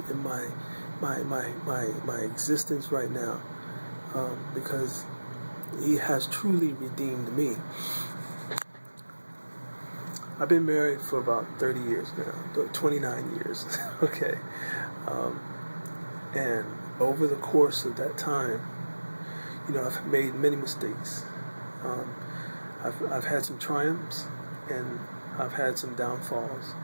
in my existence right now, because He has truly redeemed me. I've been married for about 30 years now, 29 years, okay, and over the course of that time, I've made many mistakes. I've had some triumphs, and I've had some downfalls,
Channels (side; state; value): both; inverted; correlation -1.00